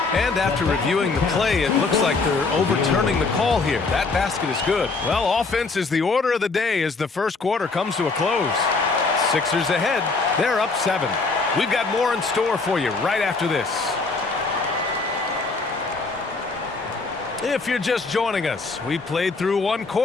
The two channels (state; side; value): quieter; right; 4.0 dB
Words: And after reviewing the play, it looks like they're overturning the call here. That basket is good. Well, offense is the order of the day as the first quarter comes to a close. Sixers ahead. They're up 7. We've got more in store for you right after this. If you're just joining us, we played through 1